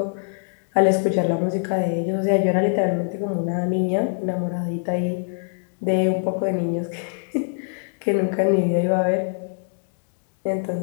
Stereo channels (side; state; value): right; silent; digital silence